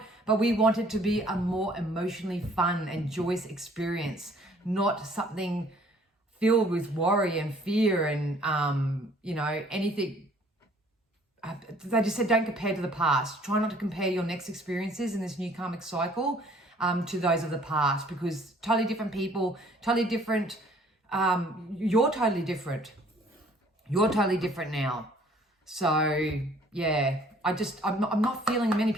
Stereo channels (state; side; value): normal; both; correlation 0.58